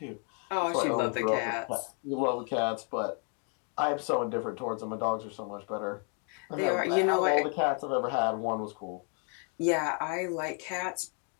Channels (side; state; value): right; quieter; 39.8 dB